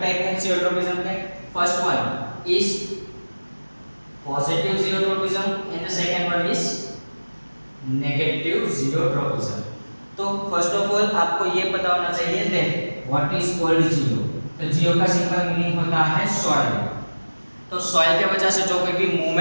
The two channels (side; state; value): both; inverted; correlation -1.00